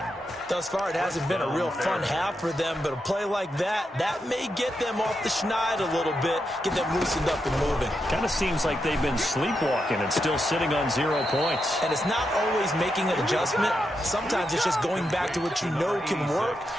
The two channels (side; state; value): both; normal; correlation 0.85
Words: Thus far, it hasn't been a real fun half for them, but a play like that may get them off the schneid a little bit, get them loosened up and moving. Kind of seems like they've been sleepwalking and still sitting on 0 points. And it's not always making an adjustment. Sometimes it's just going back to what you know can work